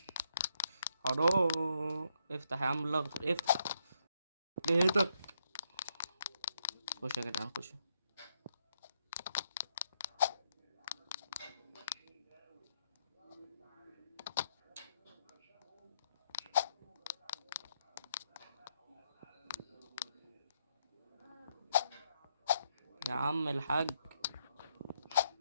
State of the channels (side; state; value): both; inverted; correlation -0.75